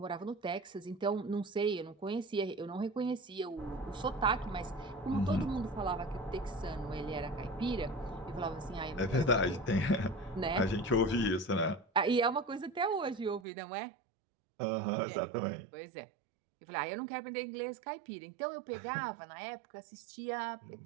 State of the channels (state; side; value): drops out; left; at 13.5 s